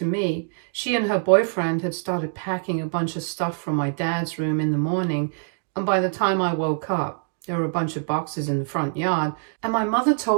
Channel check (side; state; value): left; silent; digital silence